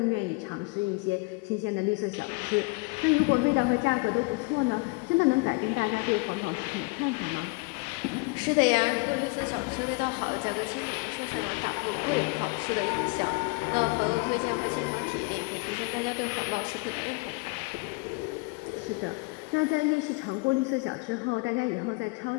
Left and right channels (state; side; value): quieter; right; 28.6 dB